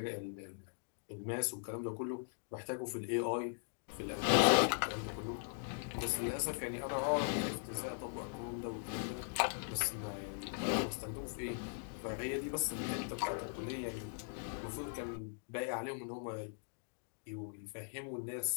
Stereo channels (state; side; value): silent; right; digital silence